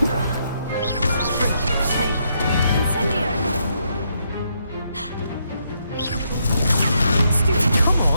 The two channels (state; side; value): inverted; both; correlation -0.76